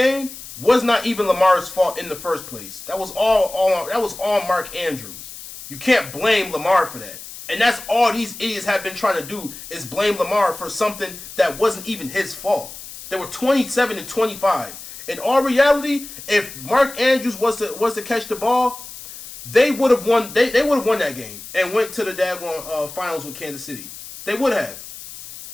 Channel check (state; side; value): noise; left; hiss, 14 dB below the sound